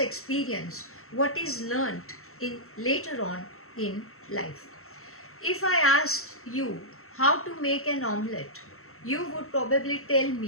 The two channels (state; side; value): late; right; 0.63 ms